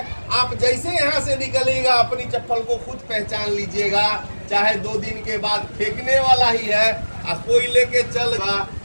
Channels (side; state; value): both; inverted; correlation -1.00